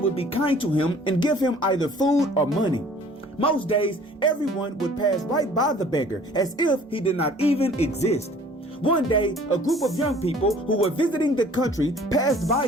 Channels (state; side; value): normal; both; correlation 0.53